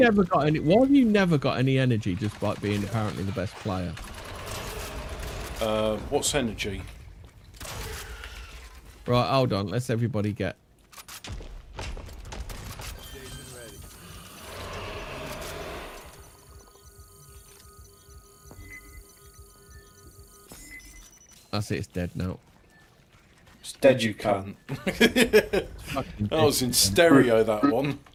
got any? Why have you never got any energy just by being apparently the best player? what's energy? Right, hold on. Let's everybody get. That's it. It's dead now. It's dead, you can't. Fucking That was in dead. stereo, that one.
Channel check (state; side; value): identical; both; correlation 1.00